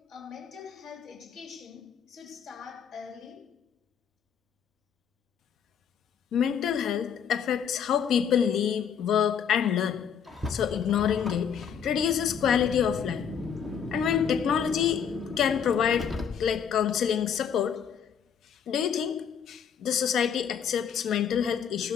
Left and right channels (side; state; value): right; quieter; 7.7 dB